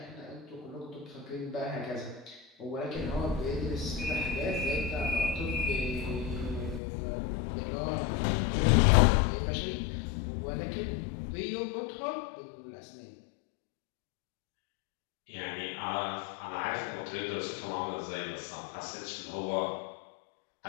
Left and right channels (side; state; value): right; drops out; at 6.8 s